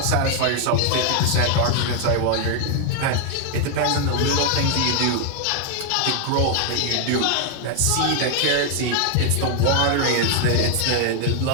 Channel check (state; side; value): different; both; correlation 0.00